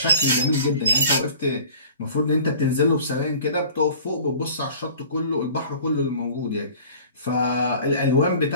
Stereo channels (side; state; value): both; inverted; correlation -0.46